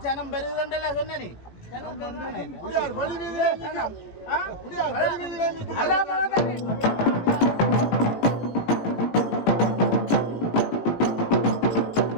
ஜனம் பெருகிறண்டல்ல சொன்ன நீ.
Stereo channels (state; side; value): late; right; 18 ms